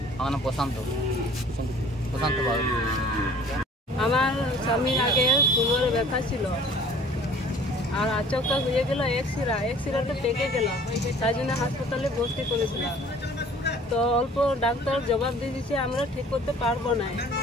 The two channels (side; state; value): both; normal; correlation 0.50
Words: আমার নাম প্রশান্ত বাবু। আমার স্বামীর আগে কোমরে ব্যথা ছিল, আর আচমকা হয়ে গেল এক্সিরাতে পেকে গেল, তাই জন্য হাসপাতালে ভর্তি করেছিলাম। তো অল্প ডাক্তার জবাব দিয়ে দিচ্ছে আমরা ঠিক করতে পারবো না।